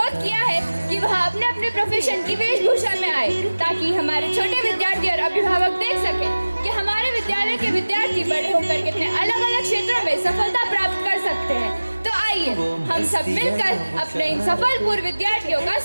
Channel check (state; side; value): inverted; both; correlation -1.00